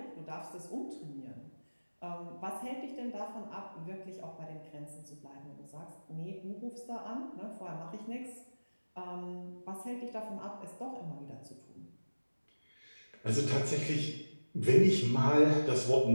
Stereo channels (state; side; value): inverted; both; correlation -1.00